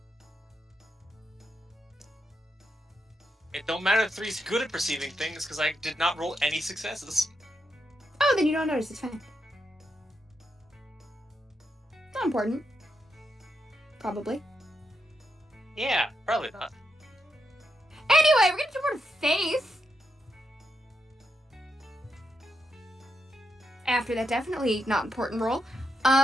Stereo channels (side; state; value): both; normal; correlation 0.83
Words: It don't matter if 3's good at perceiving things because I did not roll any successes. Oh, then you don't notice. It's fine. Not important. Probably. Yeah, probably not. Anyway, we're gonna jump on Faith. After that definitely not important roll.